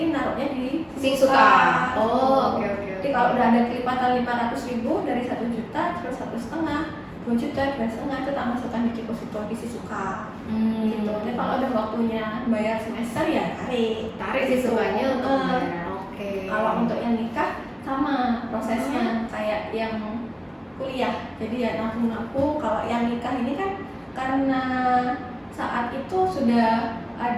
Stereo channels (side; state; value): both; identical; correlation 1.00